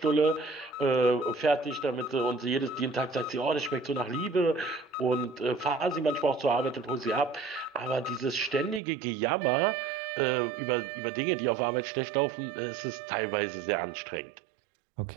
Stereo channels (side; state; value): left; drops out; at 8.8 s